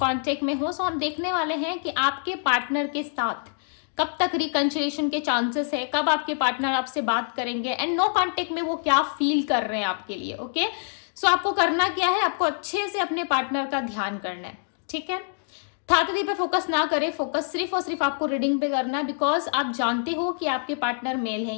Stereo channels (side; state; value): right; silent; digital silence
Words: कांटेक्ट में हो, सो हम देखने वाले हैं कि आपके पार्टनर के साथ कब तक रिकंसिलिएशन के चांसेस है, कब आपके पार्टनर आपसे बात करेंगे एंड नो कांटेक्ट में वो क्या फील कर रहे हैं आपके लिए। ओके, सो आपको करना क्या है, आपको अच्छे से अपने पार्टनर का ध्यान करना है। ठीक है, थातरी पे फोकस ना करें, फोकस सिर्फ और सिर्फ आपको रीडिंग पे करना है, बिकॉज आप जानते हो कि आपके पार्टनर मेल है